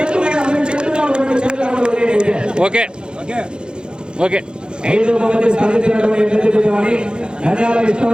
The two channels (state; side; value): late; left; 0.049 ms